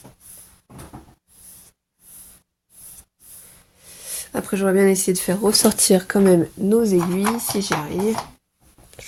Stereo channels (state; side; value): identical; both; correlation 1.00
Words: Après, j'aurais bien essayé de faire ressortir quand même nos aiguilles, si j'y arrive.